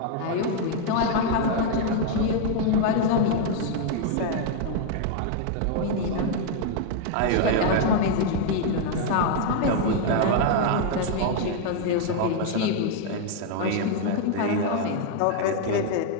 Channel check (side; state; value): both; different; correlation 0.00